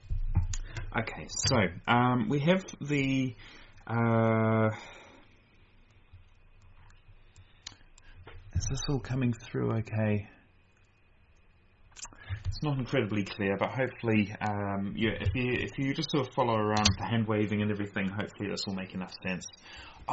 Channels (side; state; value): both; identical; correlation 1.00